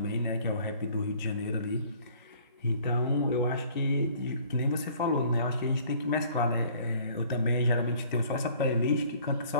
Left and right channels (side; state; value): both; inverted; correlation -0.54